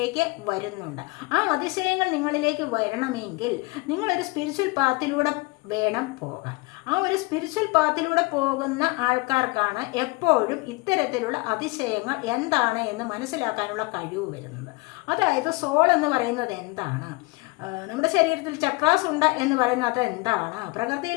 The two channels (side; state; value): right; quieter; 25.4 dB